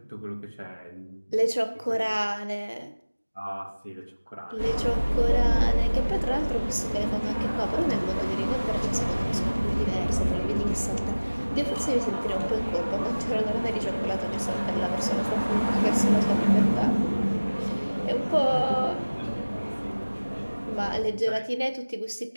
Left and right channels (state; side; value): inverted; both; correlation -1.00